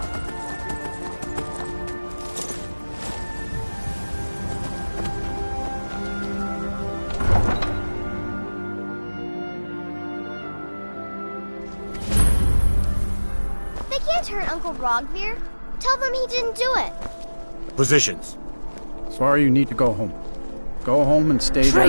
They can't hurt Uncle Rogvir. Tell them he didn't do it. Positions. Sorry, you need to go home. Go home and stay there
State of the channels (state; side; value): inverted; both; correlation -1.00